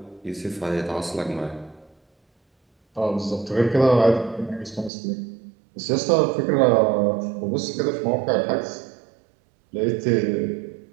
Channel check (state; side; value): drops out; left; at 4.9 s